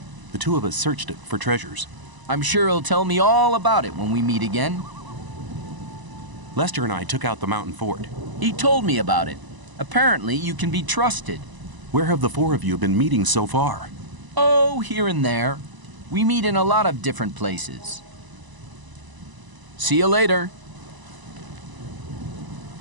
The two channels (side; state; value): left; late; 1.0 ms